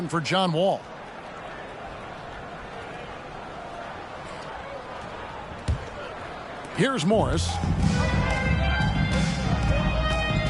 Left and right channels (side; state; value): both; identical; correlation 1.00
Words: for John Wall. Here's Morris.